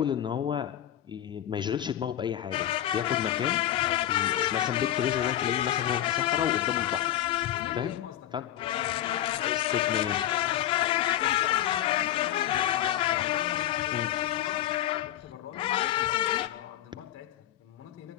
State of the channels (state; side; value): quieter; right; 12.1 dB